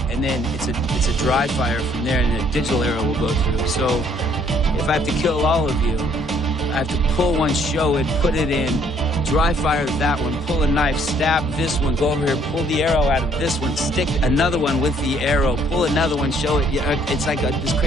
and then it's a dry fire from there, and a digital arrow will go through. So if I have to kill all of you, I have to pull one, show it, put it in, dry fire that one, pull a knife, stab this one, go over here, pull the arrow out of this one, stick another one with the arrow, pull another one, show it. It's like this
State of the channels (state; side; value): normal; both; correlation 0.63